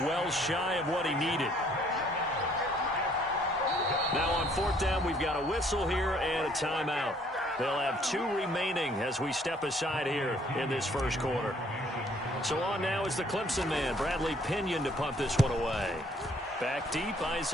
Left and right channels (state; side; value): normal; both; correlation 0.62